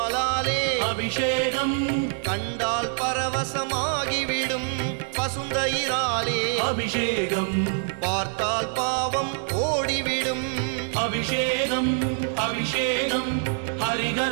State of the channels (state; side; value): silent; left; 62 dB below the other